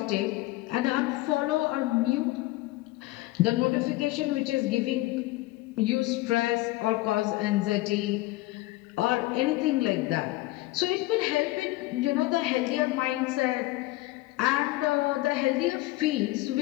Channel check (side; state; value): right; quieter; 18.8 dB